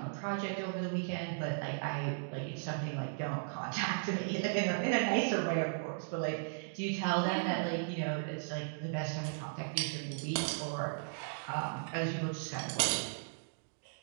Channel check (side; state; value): left; silent; digital silence